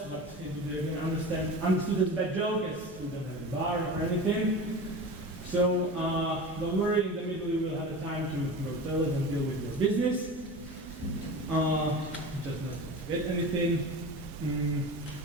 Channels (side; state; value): both; normal; correlation 0.31